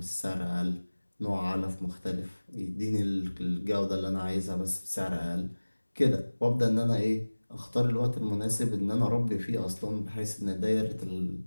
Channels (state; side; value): inverted; both; correlation -1.00